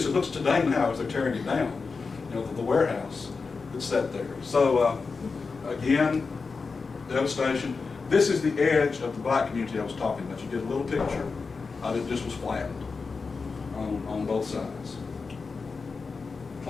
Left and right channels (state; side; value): quieter; right; 4.6 dB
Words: it looks today now as they're tearing it down. You know, the warehouse that's set there. So, again, devastation. This is the edge of the black community I was talking about. You get a little picture of it just was flattened on both sides.